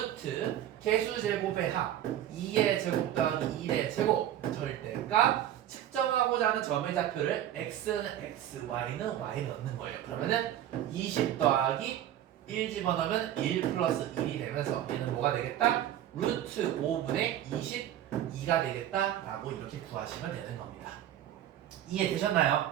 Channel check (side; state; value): left; quieter; 11.7 dB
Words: 개수 제곱의 합 2의 제곱 더하기 1의 제곱 절대값 측정하고자 하는 점의 좌표를 x는 x, y는 y 넣는 거예요. 그러면은 20 더하기 1 집어넣으면 1 플러스 1이 되면서 얘는 뭐가 되겠다? 루트 5분의 22가 되겠다라고 이렇게 구하시면 되는 겁니다. 이해되셨나요?